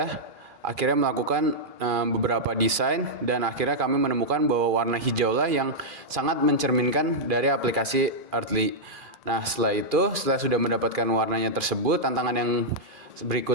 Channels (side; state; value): left; late; 2.4 ms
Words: akhirnya melakukan beberapa desain, dan akhirnya kami menemukan bahwa warna hijau lah yang sangat mencerminkan dari aplikasi Earthly. Nah, setelah sudah mendapatkan warnanya tersebut, tantangan yang